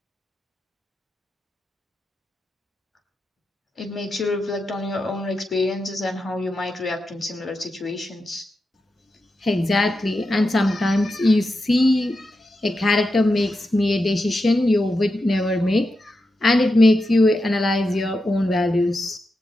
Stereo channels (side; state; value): both; normal; correlation 0.88